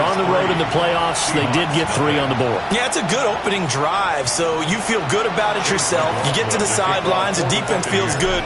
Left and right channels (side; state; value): both; identical; correlation 1.00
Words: on the road in the playoffs. They did get 3 on the board. Yeah, it's a good opening drive, so you feel good about it yourself. You get to the sidelines, the defense feels good